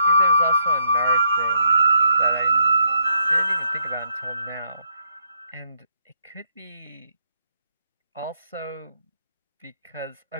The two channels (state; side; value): inverted; both; correlation -0.74